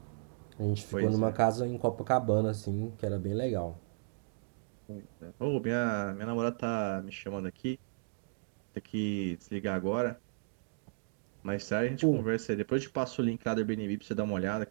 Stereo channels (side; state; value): left; silent; digital silence